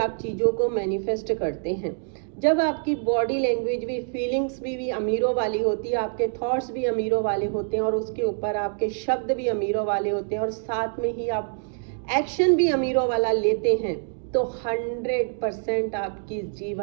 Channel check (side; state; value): left; silent; digital silence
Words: चीज़ों को मैनिफेस्ट करते हैं। जब आपकी बॉडी लैंग्वेज भी, फीलिंग्स भी अमीरों वाली होती है, आपके थॉट्स भी अमीरों वाले होते हैं और उसके ऊपर आपके शब्द भी अमीरों वाले होते हैं और साथ में ही आप एक्शन भी अमीरों वाला लेते हैं, तो 100% आपकी